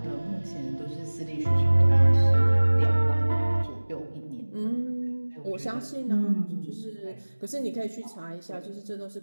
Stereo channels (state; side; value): inverted; both; correlation -1.00